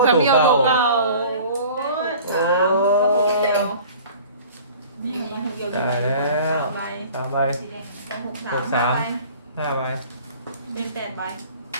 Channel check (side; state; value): both; inverted; correlation -0.45